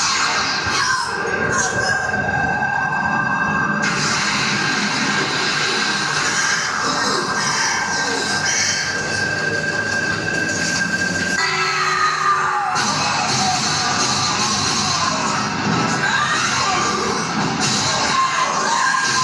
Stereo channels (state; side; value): identical; both; correlation 1.00